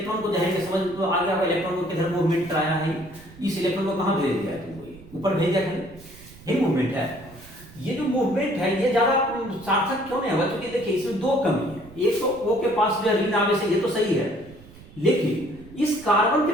को जाएंगे समझ तो आ गया, इलेक्ट्रॉन को किधर मूवमेंट कराया है, इस इलेक्ट्रॉन को कहाँ भेज दिया तुमको, ऊपर भेज दिया, यही मूवमेंट है। ये जो मूवमेंट है ये ज्यादा सार्थक क्यों नहीं होगा, क्योंकि देखिए इसमें दो कमी है, एक तो O के पास जो ऋण आवेश है ये तो सही है, लेकिन इस कार्बन के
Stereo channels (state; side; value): noise; right; rumble, 20 dB below the sound